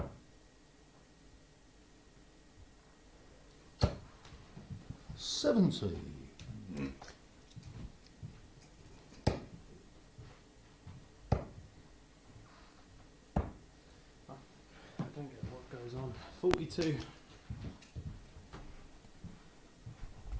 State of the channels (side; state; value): both; identical; correlation 1.00